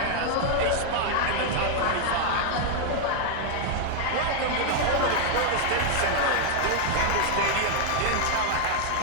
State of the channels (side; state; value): both; different; correlation 0.00